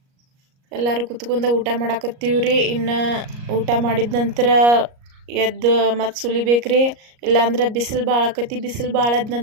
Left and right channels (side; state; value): left; late; 38 ms